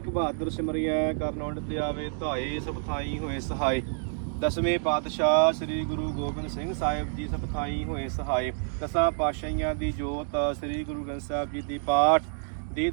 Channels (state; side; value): silent; left; digital silence